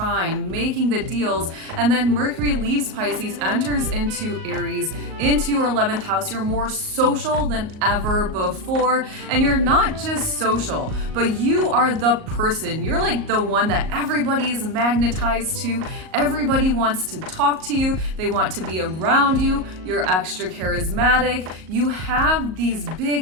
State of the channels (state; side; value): late; left; 38 ms